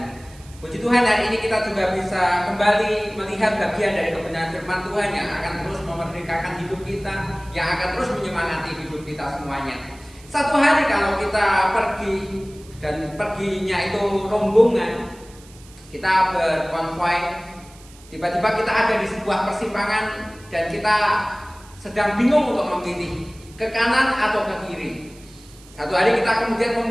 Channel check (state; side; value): noise; right; hiss, 24 dB below the sound